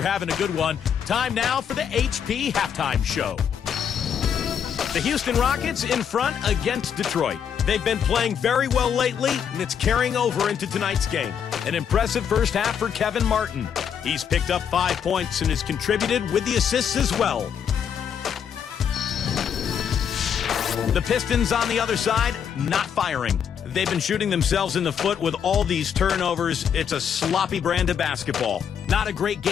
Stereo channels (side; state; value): right; quieter; 8.0 dB